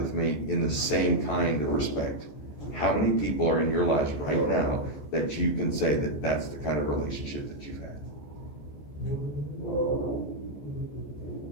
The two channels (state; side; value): late; right; 14 ms